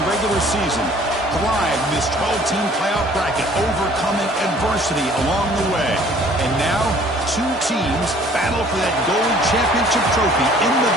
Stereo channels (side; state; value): both; normal; correlation 0.54